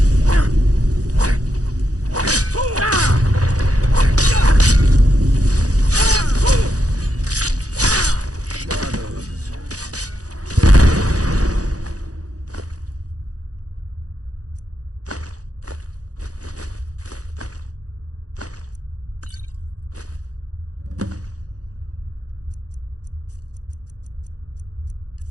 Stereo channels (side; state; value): left; late; 0.67 ms